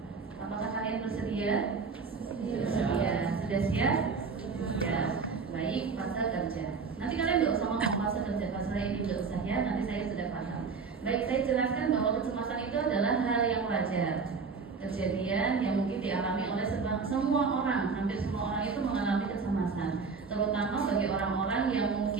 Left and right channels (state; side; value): quieter; left; 5.0 dB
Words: Apakah kalian bersedia? Bersedia. Sudah siap? Ya. Baik, fase kerja. Nanti kalian nggak usah ngomong fase kerja, fase ini nggak usah ya. Nanti saya sudah paham. Baik, saya jelaskan bahwa kecemasan itu adalah hal yang wajar. Kejadian yang mungkin dialami oleh semua orang, hampir semua orang itu mengalami kecemasan. Terutama bagi orang-orang yang